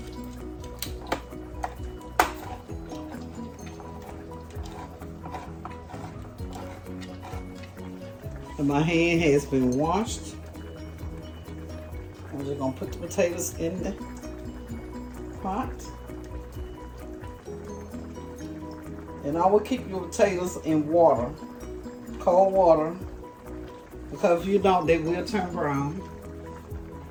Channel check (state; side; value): identical; both; correlation 1.00